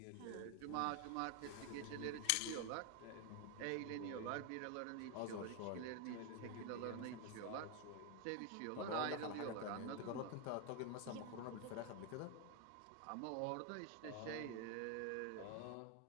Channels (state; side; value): different; both; correlation 0.01